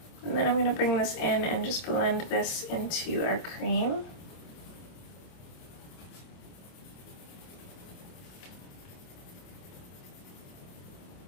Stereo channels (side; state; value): right; late; 26 ms